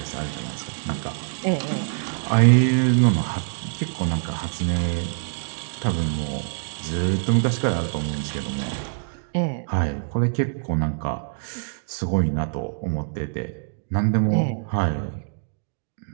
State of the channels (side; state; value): left; silent; digital silence